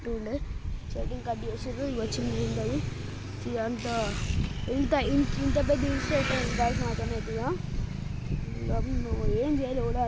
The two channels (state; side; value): identical; both; correlation 1.00